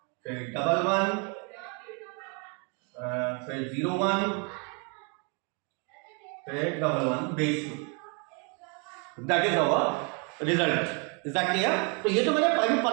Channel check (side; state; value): left; quieter; 35.4 dB